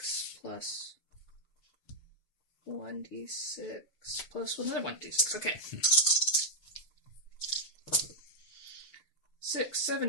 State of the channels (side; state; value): right; late; 6.7 ms